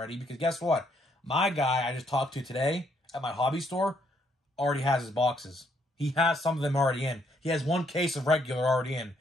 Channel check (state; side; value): normal; both; correlation 0.71